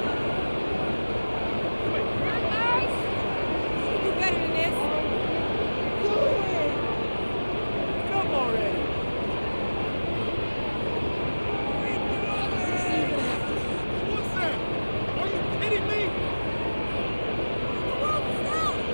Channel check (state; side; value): inverted; both; correlation -1.00